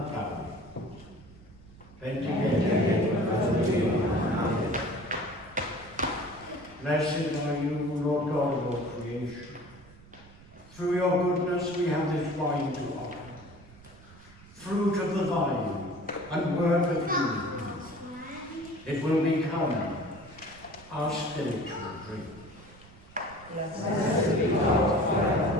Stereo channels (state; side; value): noise; right; rumble, 22 dB below the sound